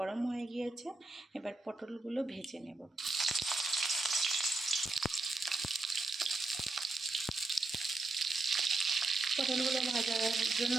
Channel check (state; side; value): quieter; left; 3.2 dB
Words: হয়ে গিয়েছে। এবার পটলগুলো ভেজে নেব। পটলগুলো ভাজার জন্য